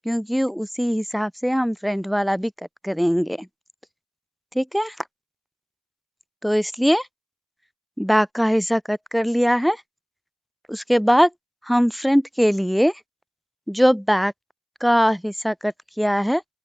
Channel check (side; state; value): both; identical; correlation 1.00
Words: क्योंकि उसी हिसाब से हम फ्रंट वाला भी कट करेंगे, ठीक है। तो इसलिए बैक का हिस्सा कट कर लिया है। उसके बाद हम फ्रंट के लिए जो बैक का हिस्सा कट किया है